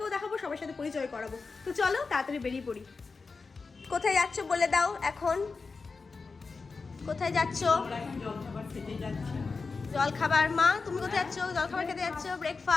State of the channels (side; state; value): right; quieter; 4.4 dB